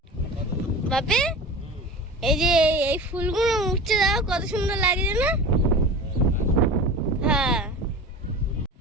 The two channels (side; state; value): both; normal; correlation 0.33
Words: বাপে এই যে এই ফুলগুলো উঠছে, দাও কত সুন্দর লাগছে না? হ্যাঁ,